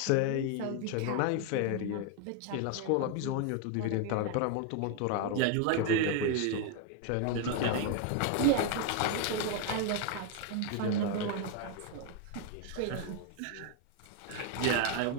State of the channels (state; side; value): different; both; correlation 0.01